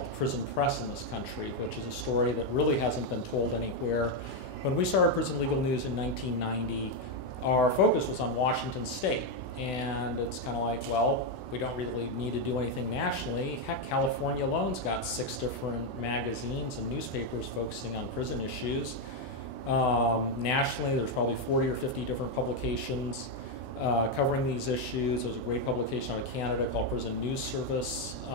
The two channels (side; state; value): right; late; 16 ms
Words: the prison press in this country, which is a story that really hasn't been told anywhere. When we started Prison Legal News in 1990, our focus was on Washington State, and it's kind of like, well, we don't really need to do anything nationally. Heck, California alone's got 6 different magazines and newspapers focusing on prison issues. Nationally, there's probably 40 or 50 different publications covering these issues. There's a great publication out of Canada called Prison News Service.